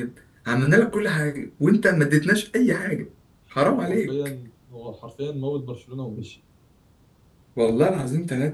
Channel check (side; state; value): both; identical; correlation 1.00